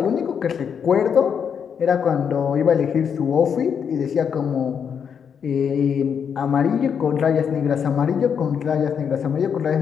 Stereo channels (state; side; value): quieter; right; 7.3 dB